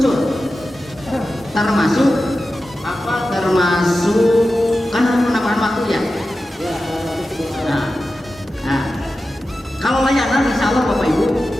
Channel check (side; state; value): both; normal; correlation 0.93